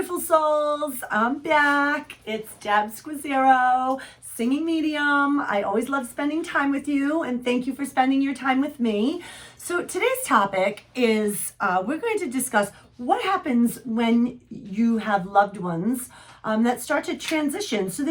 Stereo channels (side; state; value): both; identical; correlation 1.00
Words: souls, I'm back. It's Deb Squazzero, singing medium. I always love spending time with you, and thank you for spending your time with me. So today's topic is we're going to discuss what happens when you have loved ones that start to transition. So